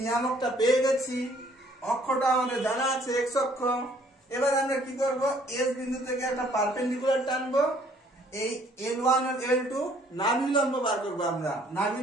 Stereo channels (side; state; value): both; normal; correlation 0.61